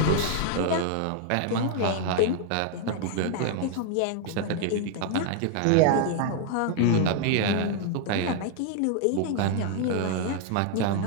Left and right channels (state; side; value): different; both; correlation 0.00